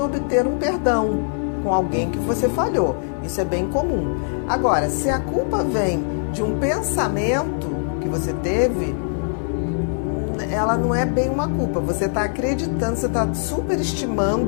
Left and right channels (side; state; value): right; silent; 64 dB below the other